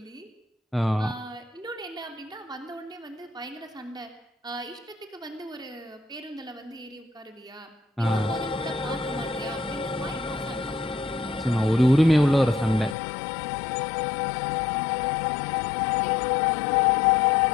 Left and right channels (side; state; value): right; drops out; at 13.0 s